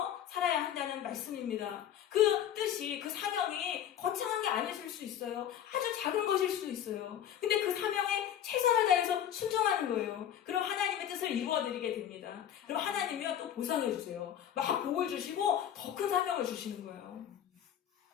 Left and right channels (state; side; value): quieter; right; 10.3 dB